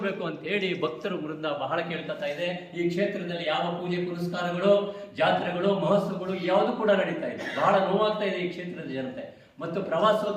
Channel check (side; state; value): both; identical; correlation 1.00